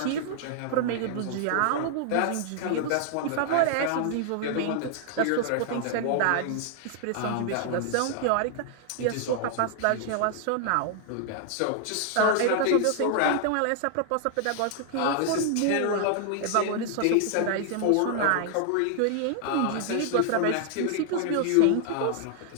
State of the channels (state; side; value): different; both; correlation 0.00